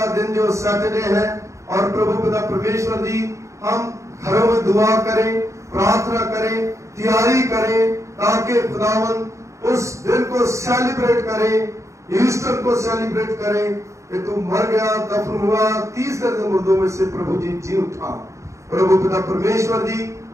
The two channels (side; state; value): left; late; 0.15 ms